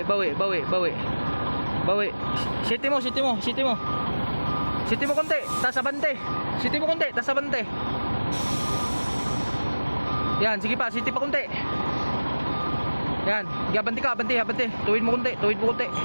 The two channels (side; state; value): both; inverted; correlation -1.00